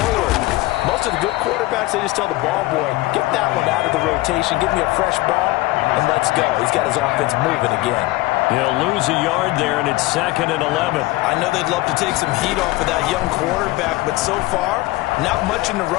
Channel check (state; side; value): quieter; right; 19.7 dB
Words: Most of the good quarterbacks, they just tell the ball boy, get that one out of the rotation, give me a fresh ball, and let's go. He's got his offense moving again. He'll lose a yard there, and it's 2nd and 11. I know they'd love to take some heat off of that young quarterback, but so far, not much in the